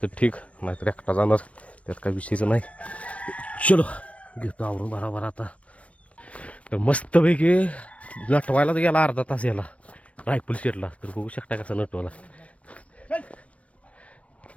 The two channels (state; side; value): late; right; 0.064 ms